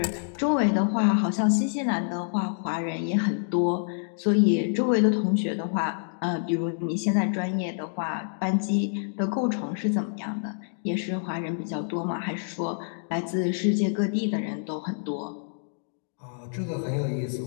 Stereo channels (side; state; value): right; silent; digital silence